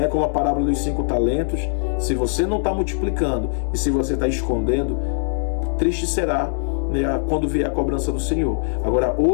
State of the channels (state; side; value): silent; right; 63 dB below the other